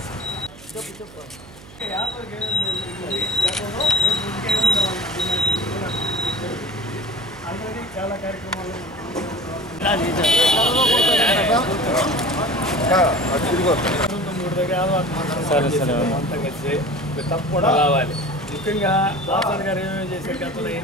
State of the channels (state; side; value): noise; right; hum, 20 dB below the sound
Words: చాలా కార్యక్రమాలు తప్పకుండా రావాలి. ముఖ్యంగా వాసన్ గారు ఏమేమి చేసే గతంలో